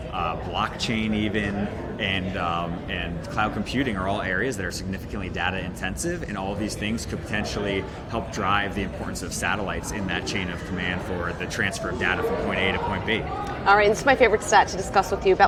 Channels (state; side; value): identical; both; correlation 1.00